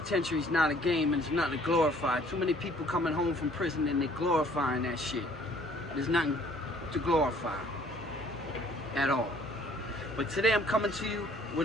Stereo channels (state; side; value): normal; both; correlation 0.58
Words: is not a game and it's not to glorify. Too many people coming home from prison and they're glorifying that shit. There's nothing to glorify at all. But today I'm coming to you